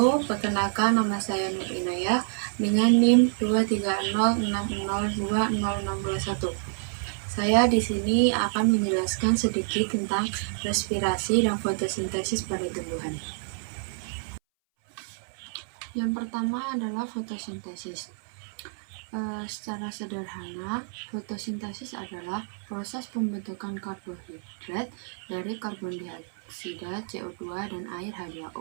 Perkenalkan, nama saya Nur Inayah dengan NIM 230602021. Saya di sini akan menjelaskan sedikit tentang respirasi dan fotosintesis pada tumbuhan. Yang pertama adalah fotosintesis. Secara sederhana, fotosintesis adalah proses pembentukan karbohidrat dari karbon dioksida, CO2, dan air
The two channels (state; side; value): silent; left; 59 dB below the other